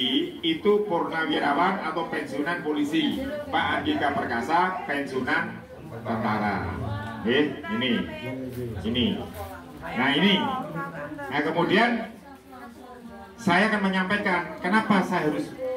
itu purnawirawan atau pensiunan polisi. Pak Andika Perkasa pensiunan tentara. Ini. Nah ini. Nah kemudian saya akan menyampaikan kenapa saya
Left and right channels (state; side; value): identical; both; correlation 1.00